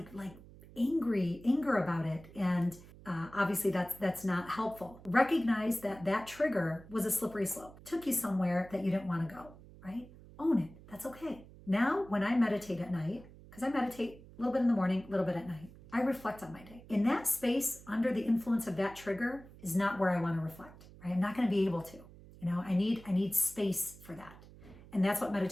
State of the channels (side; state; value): right; noise; hum, 20 dB below the sound